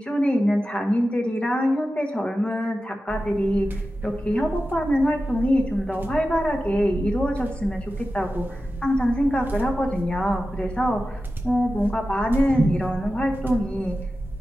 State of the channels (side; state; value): both; normal; correlation 0.93